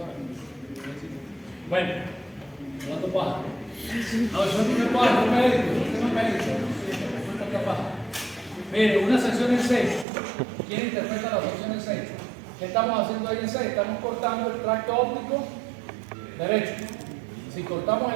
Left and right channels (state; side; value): drops out; left; at 10.1 s